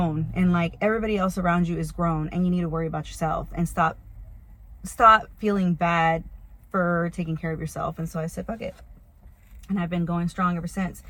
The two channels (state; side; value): identical; both; correlation 1.00